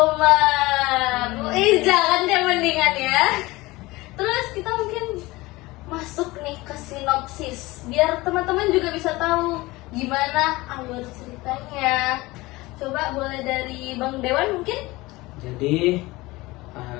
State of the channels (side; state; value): right; quieter; 20.9 dB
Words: Jangan deh mendingan ya. Terus kita mungkin masuk nih ke sinopsis biar teman-teman juga bisa tahu gimana alur ceritanya. Coba boleh dari Bang Dewan mungkin? Jadi